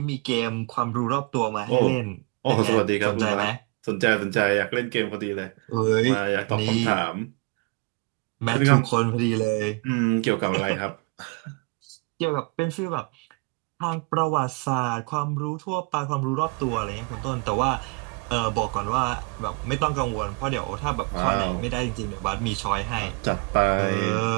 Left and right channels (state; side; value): quieter; left; 29.7 dB